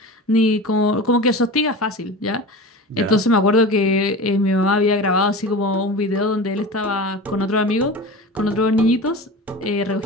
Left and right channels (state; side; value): normal; both; correlation 0.32